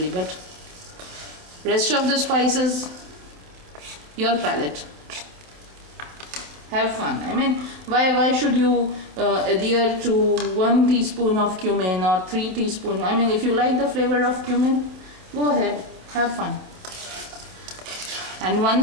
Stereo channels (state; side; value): late; left; 27 ms